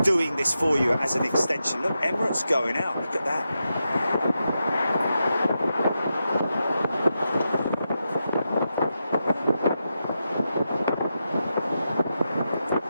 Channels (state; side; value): inverted; both; correlation -0.87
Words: doing this for you as an extension. Look, Emirates going out. Look at that.